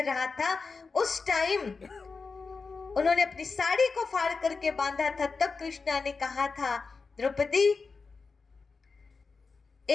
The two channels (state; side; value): quieter; right; 4.5 dB